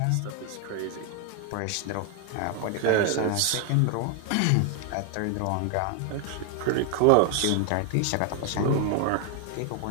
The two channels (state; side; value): different; both; correlation 0.00